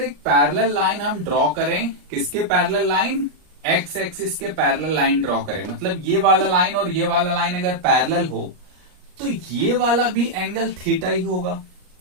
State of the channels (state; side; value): late; left; 39 ms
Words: पैरेलल लाइन हम ड्रॉ करें, किसके पैरेलल लाइन, एक्स एक्सिस के पैरेलल लाइन ड्रॉ करें, मतलब ये वाला लाइन और ये वाला लाइन अगर पैरेलल हो, तो ये वाला भी एंगल थीटा ही होगा,